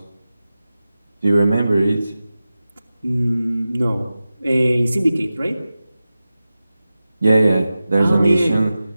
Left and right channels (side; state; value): both; inverted; correlation -0.94